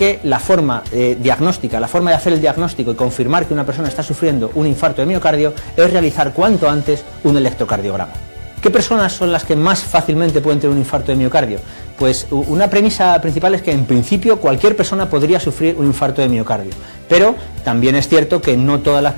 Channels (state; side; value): inverted; both; correlation -1.00